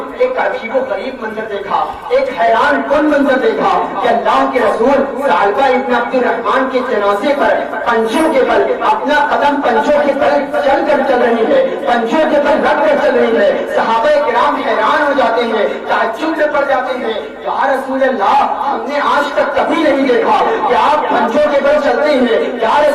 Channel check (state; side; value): identical; both; correlation 1.00